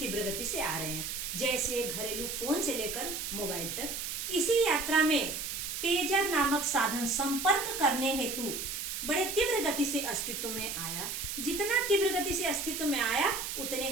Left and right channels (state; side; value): noise; right; hiss, 4 dB below the sound